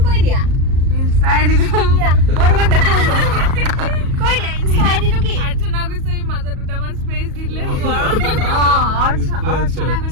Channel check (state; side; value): late; left; 37 ms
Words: কৈ দিয়া ইনষ্টা আইডিটো কৈ দিয়া ইনষ্টা আইডিটো কি অৰ্চনা গোস্বামী মাজত দুটামান স্পেচ দি দিলে হ'ব আৰু অৰ্চনা